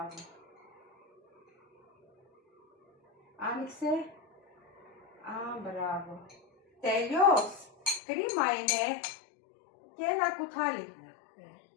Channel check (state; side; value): drops out; right; at 8.0 s